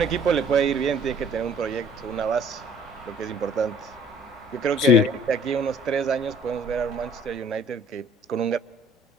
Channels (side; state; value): both; normal; correlation 0.54